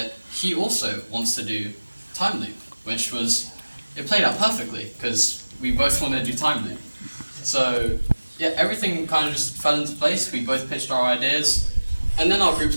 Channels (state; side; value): inverted; both; correlation -1.00